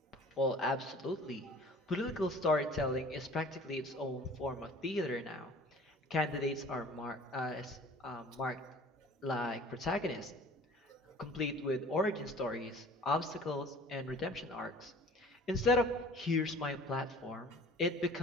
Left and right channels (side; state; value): both; normal; correlation 0.47